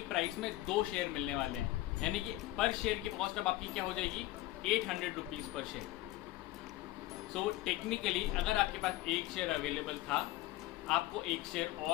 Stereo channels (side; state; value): right; quieter; 17.2 dB